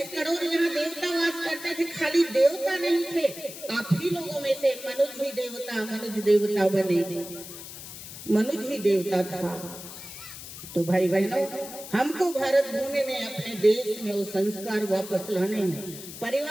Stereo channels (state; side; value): noise; left; hiss, 12 dB below the sound